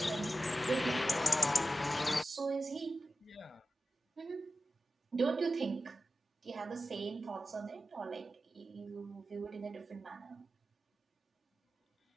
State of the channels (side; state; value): both; normal; correlation 0.93